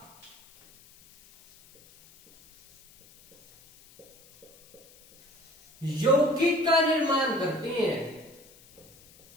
यौगिक का निर्माण करते हैं।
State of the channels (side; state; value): left; noise; hiss, 26 dB below the sound